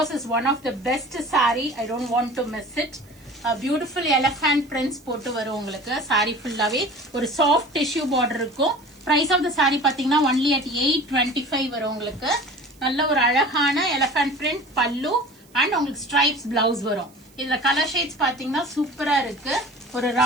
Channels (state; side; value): noise; right; hiss, 29 dB below the sound